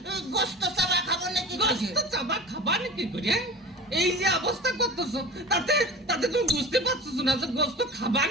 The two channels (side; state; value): both; normal; correlation 0.35